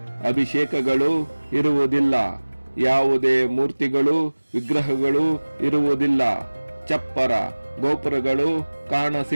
ಅಭಿಷೇಕಗಳು ಇರುವುದಿಲ್ಲ, ಯಾವುದೇ ಮೂರ್ತಿಗಳು ವಿಗ್ರಹಗಳು ಇರುವುದಿಲ್ಲ, ಚಪ್ಪರ ಗೋಪುರಗಳು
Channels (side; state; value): both; inverted; correlation -1.00